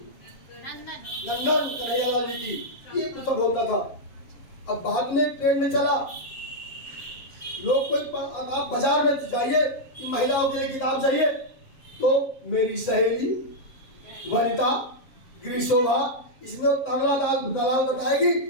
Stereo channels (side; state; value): right; late; 7.4 ms